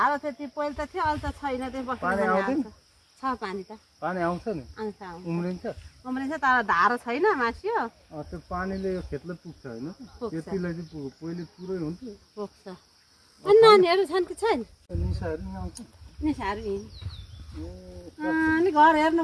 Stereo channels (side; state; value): both; identical; correlation 1.00